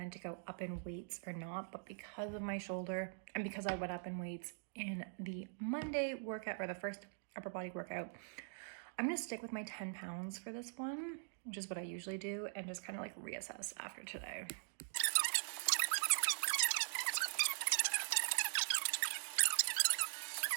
to go up in weights or not, but because of my shoulder and because I went up in weights in the Monday workout or the first upper body workout, I'm gonna stick with my 10 pounds for this one, which is what I usually do, and just kind of like reassess after today.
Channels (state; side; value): silent; left; digital silence